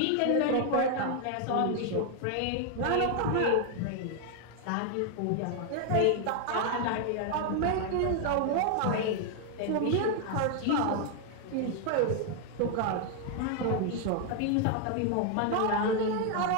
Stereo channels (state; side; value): different; both; correlation 0.00